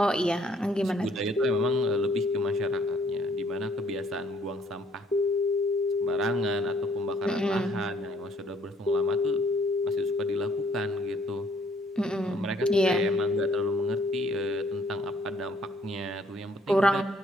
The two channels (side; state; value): both; normal; correlation 0.64